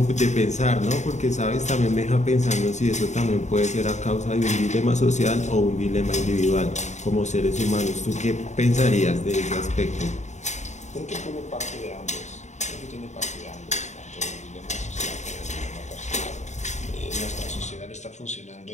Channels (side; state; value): right; late; 0.34 ms